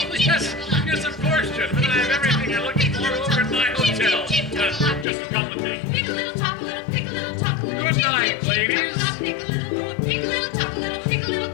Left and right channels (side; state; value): right; drops out; at 5.1 s